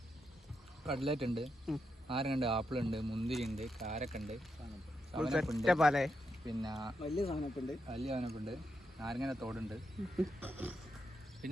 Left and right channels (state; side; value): normal; both; correlation 0.84